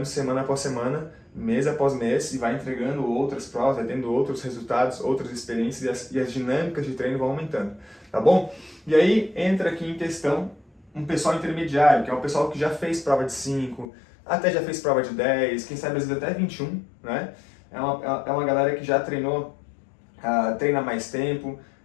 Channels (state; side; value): drops out; right; at 13.9 s